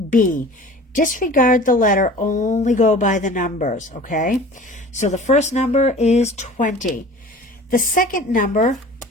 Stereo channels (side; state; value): both; normal; correlation 0.43